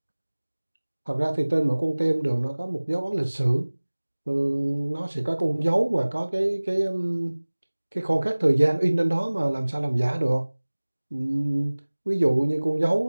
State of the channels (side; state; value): both; inverted; correlation -1.00